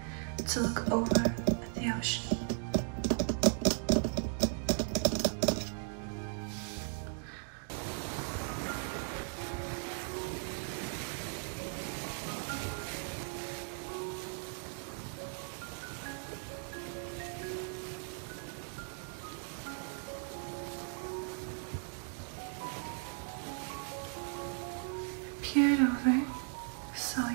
to look over at the ocean. Peered over, saw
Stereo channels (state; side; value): silent; left; 53 dB below the other